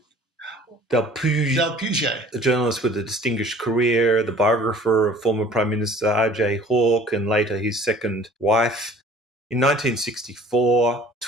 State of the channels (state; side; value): normal; both; correlation 0.50